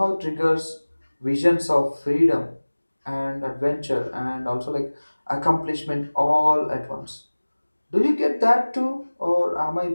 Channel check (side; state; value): both; inverted; correlation -1.00